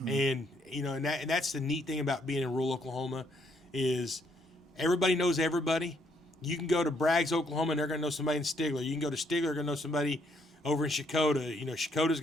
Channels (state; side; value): normal; both; correlation 0.71